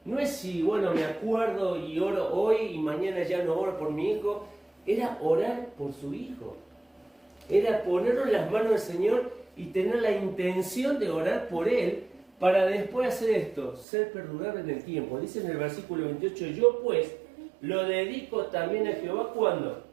No es si, bueno, me acuerdo y oro hoy y mañana ya no oro por mi hijo. Era orar por su hijo. Era ponerlo en las manos del Señor y tener la intención de orar por él para después hacer esto, ser perdurable en el tiempo. Dice en el versículo 28, yo pues lo dedico también a Jehová, ¿cuándo?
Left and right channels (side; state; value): left; drops out; at 13.9 s